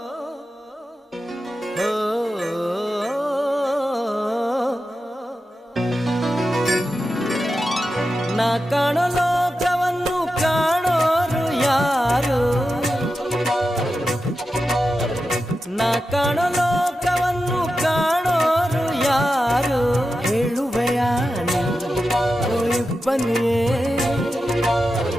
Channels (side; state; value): both; normal; correlation 0.91